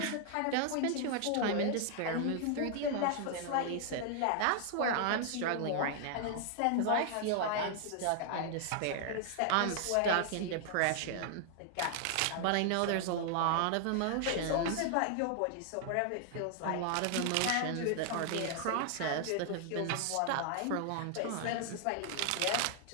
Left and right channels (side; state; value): both; different; correlation 0.00